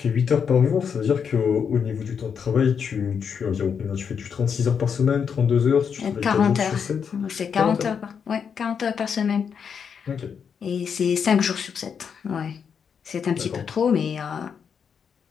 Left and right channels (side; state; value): right; quieter; 6.9 dB